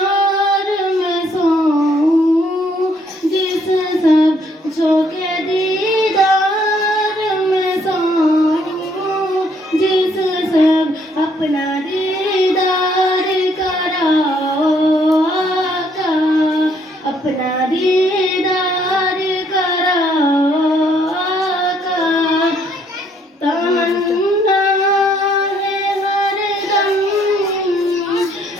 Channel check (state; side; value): normal; both; correlation 0.67